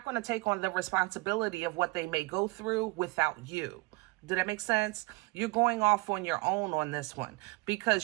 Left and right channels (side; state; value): left; quieter; 24.0 dB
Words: going to take on the responsibility of what they may go through without you. Did that make sense? You're going off on your own on this one,